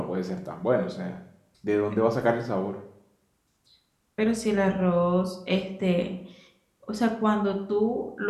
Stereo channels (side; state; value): both; identical; correlation 1.00